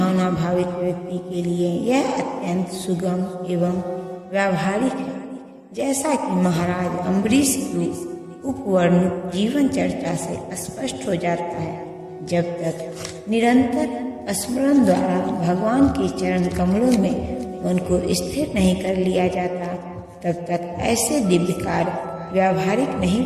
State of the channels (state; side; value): identical; both; correlation 1.00